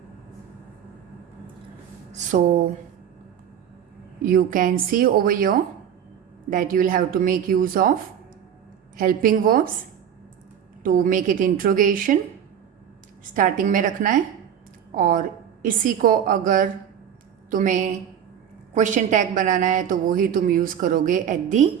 So you can see over here that you will have to make use of helping verbs to make it interrogation starting में रखना है, और इसी को अगर तुम्हें question tag बनाना है तो वो ही तुम यूज़ करोगे at the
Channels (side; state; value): left; quieter; 9.0 dB